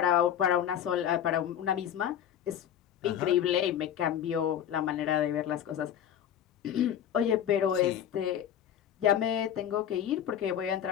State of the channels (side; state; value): right; quieter; 9.9 dB